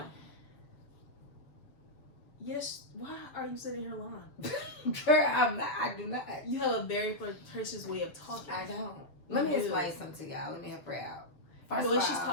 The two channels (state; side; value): late; right; 6.9 ms